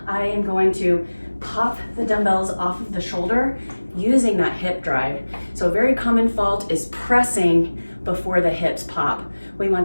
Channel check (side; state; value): both; inverted; correlation -1.00